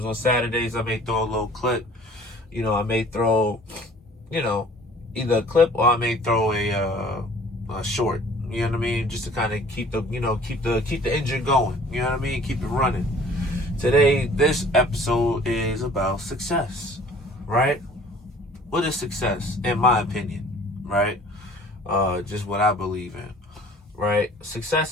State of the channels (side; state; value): both; normal; correlation 0.51